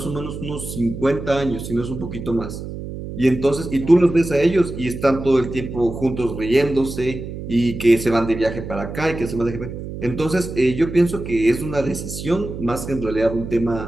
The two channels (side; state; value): right; noise; hum, 9 dB below the sound